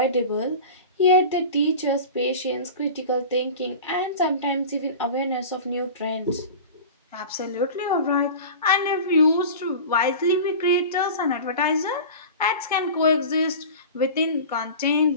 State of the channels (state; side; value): inverted; both; correlation -0.34